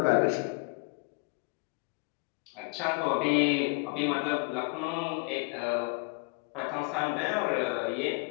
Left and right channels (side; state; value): right; quieter; 30.6 dB